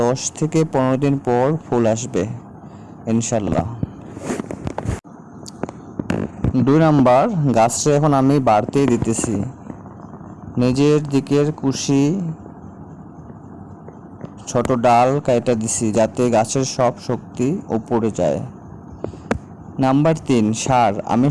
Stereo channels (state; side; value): identical; both; correlation 1.00